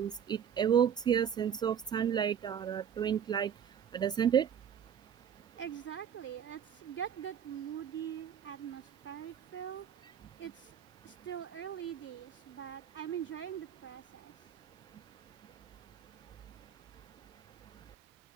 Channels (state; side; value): quieter; left; 8.5 dB